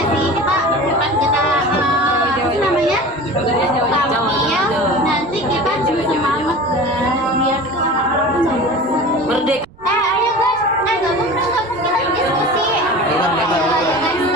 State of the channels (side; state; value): right; noise; rumble, 24 dB below the sound